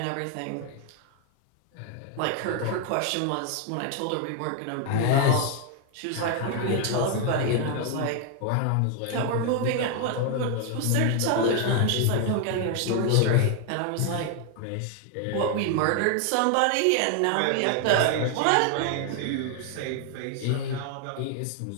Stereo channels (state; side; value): different; both; correlation 0.00